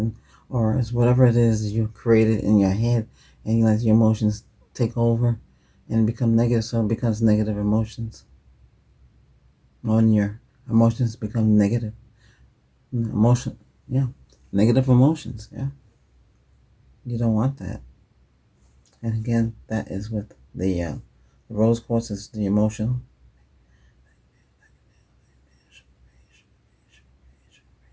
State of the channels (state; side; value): identical; both; correlation 1.00